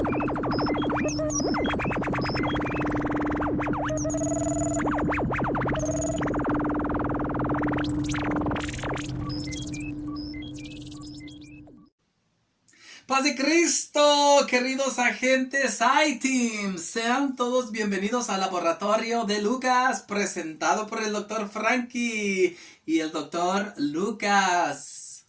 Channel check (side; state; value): both; identical; correlation 1.00